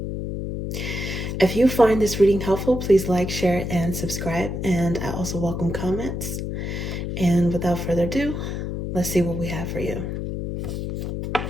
If you find this reading helpful, please like, share, and subscribe. And I also welcome comments. And without further ado, let's see what we have for you.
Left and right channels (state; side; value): noise; left; hum, 4 dB below the sound